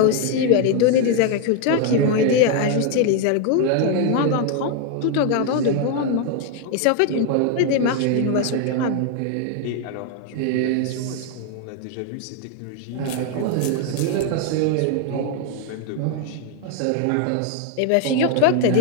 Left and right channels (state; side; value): different; both; correlation 0.01